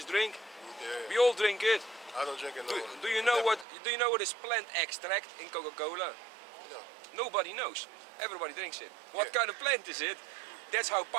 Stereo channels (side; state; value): left; drops out; at 3.7 s